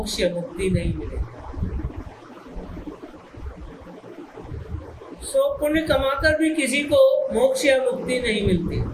या मुक्ति नहीं मिलेगा। सो पुण्य कमाकर भी किसी को मोक्ष या मुक्ति नहीं मिलती।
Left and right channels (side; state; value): both; identical; correlation 1.00